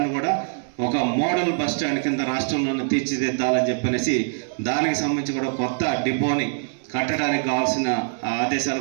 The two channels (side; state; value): left; silent; digital silence